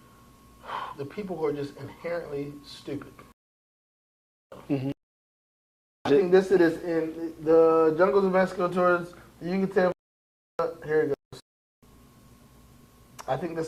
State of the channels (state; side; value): identical; both; correlation 1.00